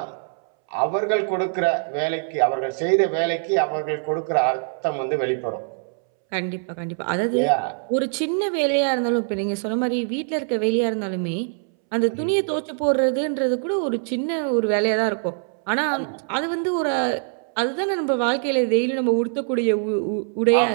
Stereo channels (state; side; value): silent; left; 63 dB below the other